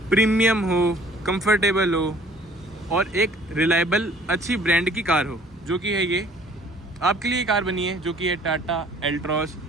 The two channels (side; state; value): both; normal; correlation 0.55